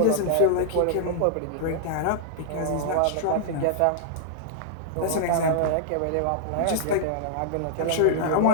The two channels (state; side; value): different; both; correlation -0.01